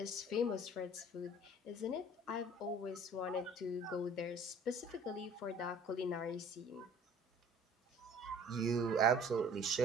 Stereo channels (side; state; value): both; normal; correlation 0.50